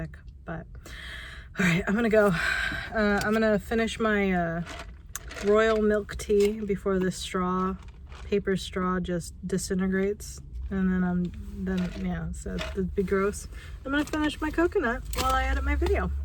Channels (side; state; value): both; identical; correlation 1.00